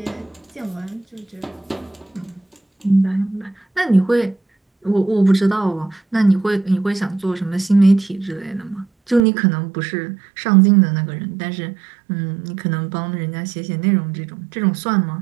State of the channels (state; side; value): drops out; left; at 9.2 s